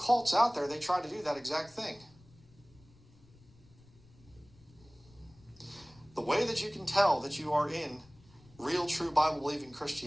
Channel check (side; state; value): left; noise; rumble, 26 dB below the sound